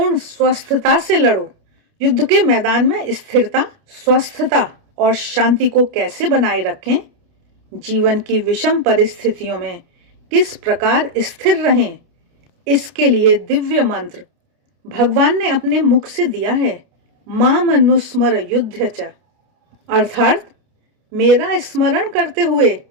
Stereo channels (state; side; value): late; left; 29 ms